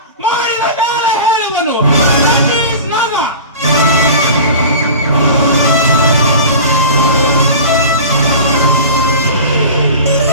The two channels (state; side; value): inverted; both; correlation -0.36